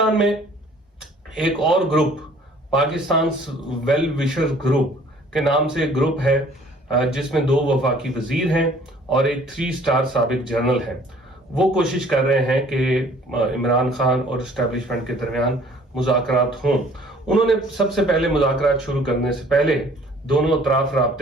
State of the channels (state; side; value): normal; both; correlation 0.55